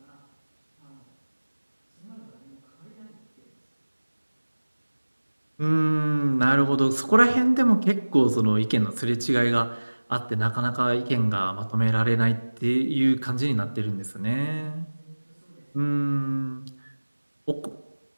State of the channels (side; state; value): both; inverted; correlation -1.00